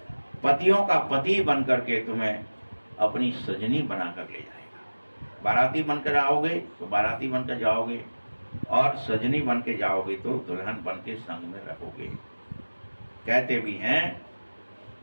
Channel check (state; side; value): inverted; both; correlation -1.00